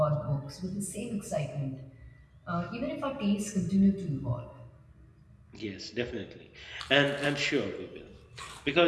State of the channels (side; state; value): both; identical; correlation 1.00